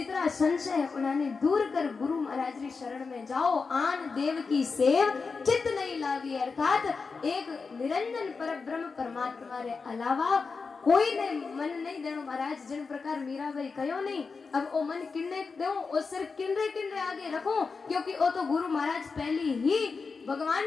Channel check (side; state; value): right; quieter; 4.7 dB